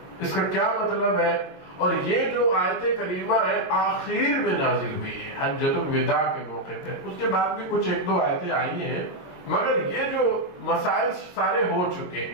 اس کا کیا مطلب ہے؟ اور یہ جو آیت کریمہ ہے آخر میں نازل ہوئی ہے حجۃ الوداع کے موقع پہ، اس کے بعد بھی کچھ 1-2 آیتیں آئی ہیں، مگر یہ جو مسائل سارے ہو چکے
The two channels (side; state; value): right; late; 22 ms